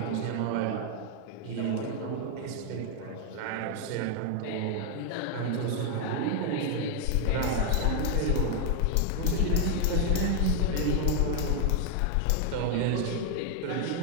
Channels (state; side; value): different; both; correlation 0.01